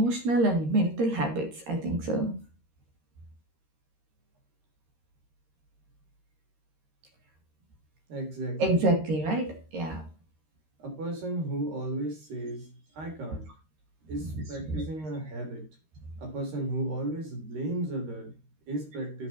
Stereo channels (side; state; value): left; late; 13 ms